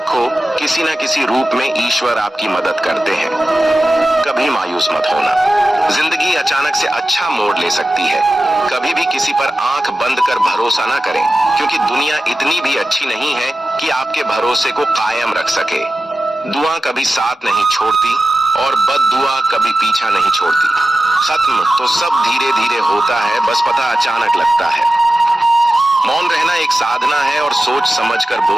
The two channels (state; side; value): normal; both; correlation 0.94